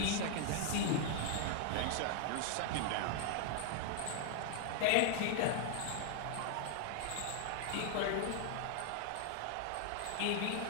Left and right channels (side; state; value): both; different; correlation 0.00